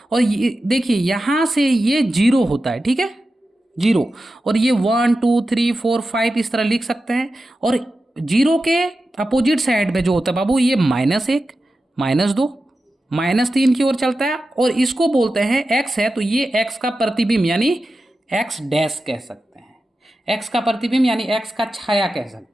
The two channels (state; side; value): normal; both; correlation 0.92